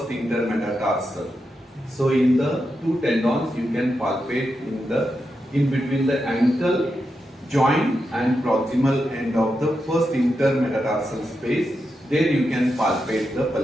intermetatarsal. So in the 2 tendons you can palpate in between the ankle joint and proximal end of the first intermetatarsal space. There you can palpate the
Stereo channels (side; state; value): both; normal; correlation 0.87